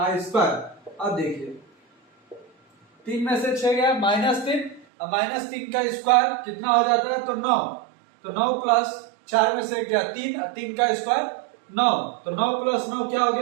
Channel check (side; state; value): left; drops out; at 4.9 s